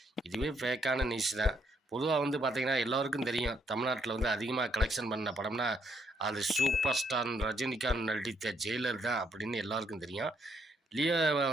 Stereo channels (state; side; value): normal; both; correlation 0.73